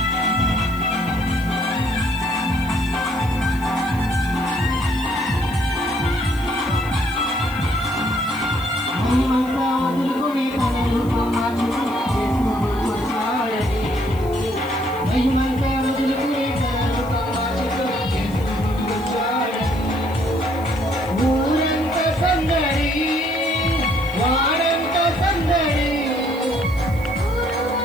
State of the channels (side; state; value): left; noise; hiss, 23 dB below the sound